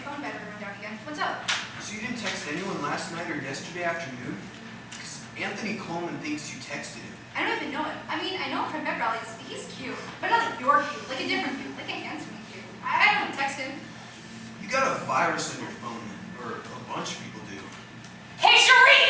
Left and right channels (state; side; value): identical; both; correlation 1.00